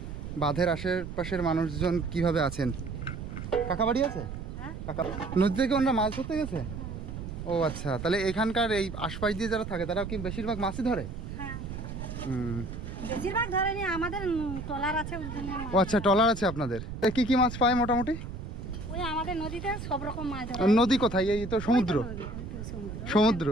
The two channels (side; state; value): right; noise; rumble, 8 dB below the sound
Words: বাঁধের আশেপাশের মানুষজন কিভাবে আছেন। কাকা বাড়ি আছে? কাকা নদী থেকে ওনারা মাছ ধরতে গেছে? ও আচ্ছা, তাহলে এখানকার এই আশপাশ দিয়ে যারা থাকে তারা কি বেশিরভাগ মাছই ধরে? বেশিরভাগ ধরেনি, আমাদের ট্রলার আছে। ও আচ্ছা, ট্রলার আছে আপনাদের। কি কি মাছ পায় মোটামুটি? ওই আমাদের নদীতে সব রকম মাছ ধরে। নদী কোথায়? এই তো সমুদ্র। সমুদ্র,